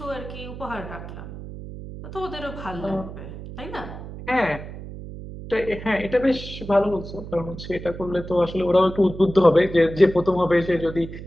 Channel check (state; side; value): noise; right; hum, 11 dB below the sound